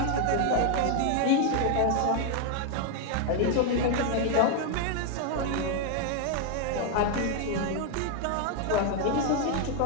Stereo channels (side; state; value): both; different; correlation 0.00